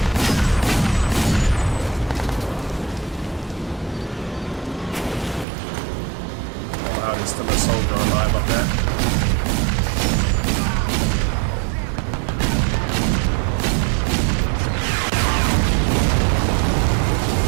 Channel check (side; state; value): left; drops out; at 5.5 s